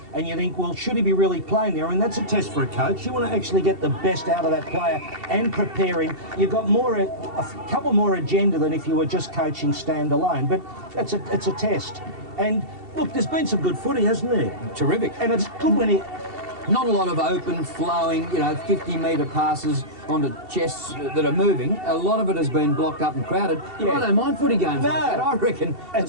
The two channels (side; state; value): left; late; 2.7 ms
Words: and you think, well, should he be really playing there? I mean, that's a test for a coach. You want to actually get the best out of that player and prepare him. You've got a couple more agenda than if you were just coaching standalone, but it's a test. And, look, there's been some good footy, hasn't there? Terrific. And it's good when he... Not a lot of open, flowing, you know, 50-metre passes onto chests that are moving. A lot of it has been blocked up and crowded. Yeah. I don't mind footy games like that. I reckon that